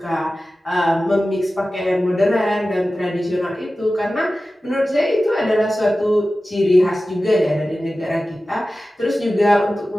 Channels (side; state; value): both; normal; correlation 0.95